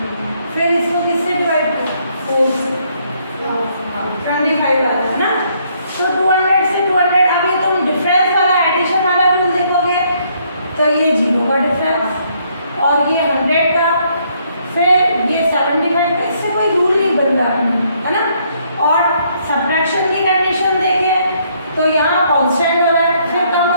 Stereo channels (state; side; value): inverted; both; correlation -0.69